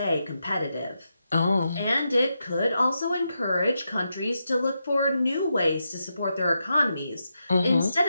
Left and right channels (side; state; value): both; inverted; correlation -0.85